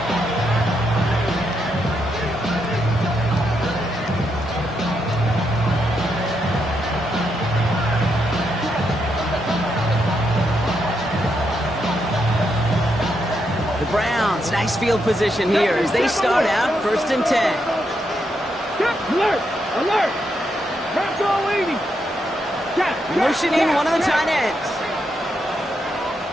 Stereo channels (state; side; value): normal; both; correlation 0.80